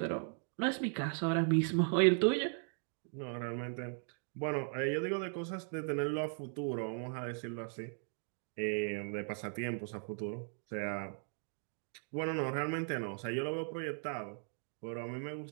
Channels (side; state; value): left; silent; 52 dB below the other